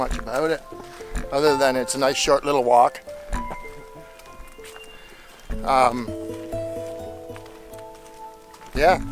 about it, other than it's a nice short little walk. Yeah.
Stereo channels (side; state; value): both; identical; correlation 1.00